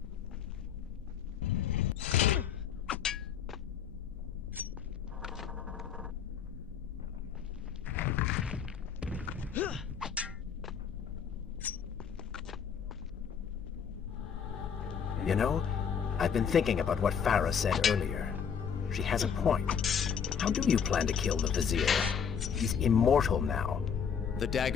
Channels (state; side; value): quieter; right; 7.2 dB